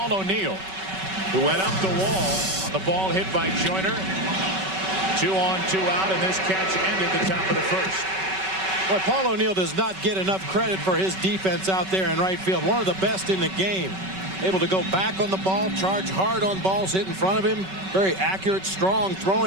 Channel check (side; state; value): left; late; 5.3 ms